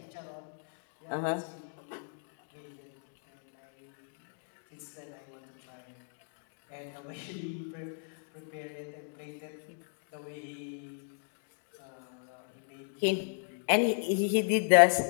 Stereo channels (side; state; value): right; silent; digital silence